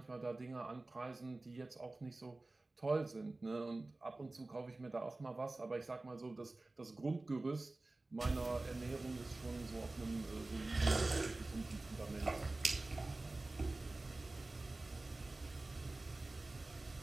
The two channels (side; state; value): left; quieter; 3.0 dB